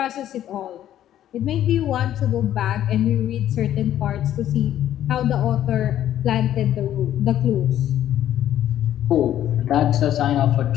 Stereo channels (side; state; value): right; quieter; 11.7 dB